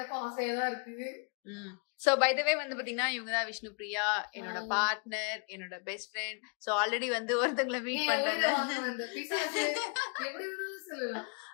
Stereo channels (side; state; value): right; quieter; 37.9 dB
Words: ஆசையாதான் இருக்குது. சோ பை த வே வந்து பாத்தீங்கன்னா இவங்க தான் விஷ்ணுபிரியா, என்னோட பார்ட்னர், என்னோட பெஸ்ட் ஃப்ரெண்ட். சோ ஆல்ரெடி வந்து ஒருத்தங்களை மீட் பண்றாங்க.